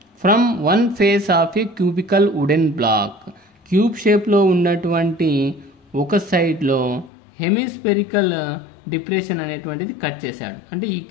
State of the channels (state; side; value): drops out; right; at 7.1 s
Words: from one face of a cubical wooden block. Cube షేప్లో ఉన్నటువంటి ఒక సైడ్లో హెమిస్పెరికల్ డిప్రెషన్ అనేటువంటిది కట్ చేశాడు. అంటే ఈ